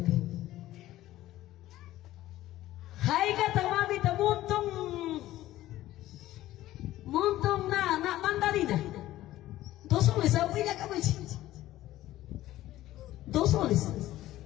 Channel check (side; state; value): right; quieter; 15.0 dB